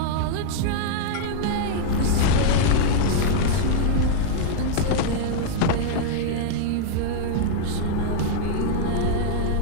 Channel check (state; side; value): different; both; correlation -0.01